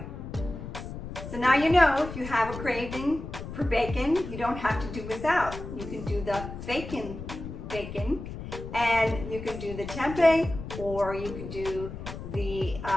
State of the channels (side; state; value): left; noise; rumble, 9 dB below the sound